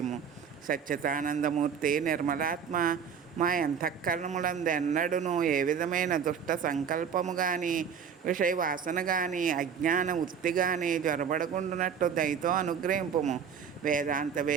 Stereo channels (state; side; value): quieter; left; 7.2 dB